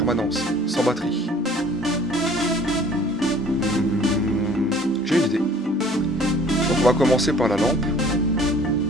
sans batterie. J'ai une idée. Donc on va commencer par la lampe.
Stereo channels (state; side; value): normal; both; correlation 0.52